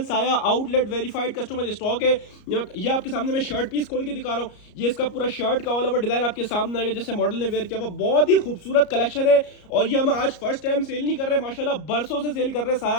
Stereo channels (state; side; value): late; right; 34 ms